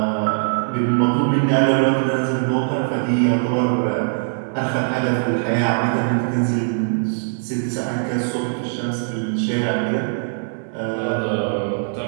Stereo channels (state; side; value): silent; left; digital silence